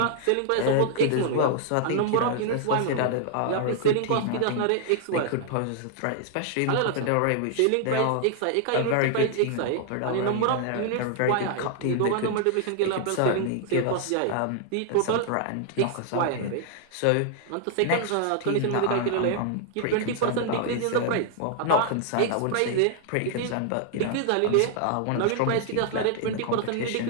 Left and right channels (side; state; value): both; different; correlation -0.01